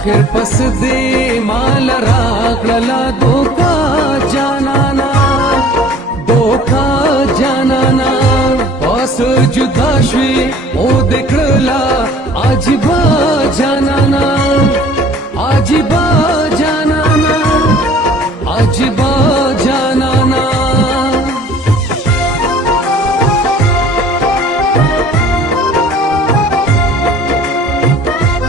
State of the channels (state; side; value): normal; both; correlation 0.50